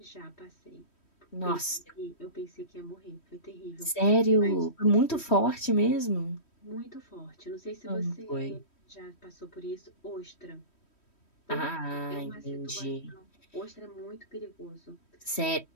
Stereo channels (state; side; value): late; right; 3.1 ms